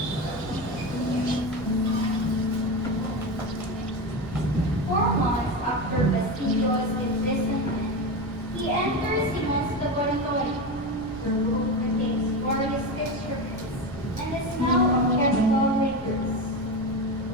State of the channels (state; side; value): noise; right; rumble, 17 dB below the sound